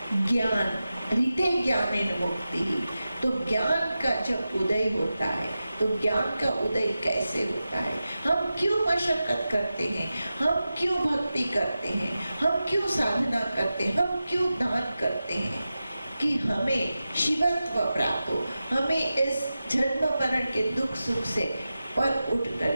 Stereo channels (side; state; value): both; inverted; correlation -0.93